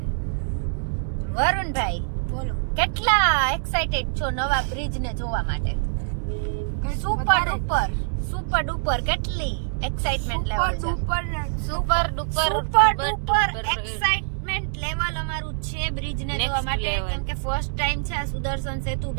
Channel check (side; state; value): left; silent; 62 dB below the other